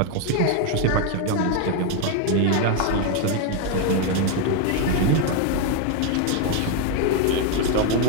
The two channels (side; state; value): both; different; correlation 0.01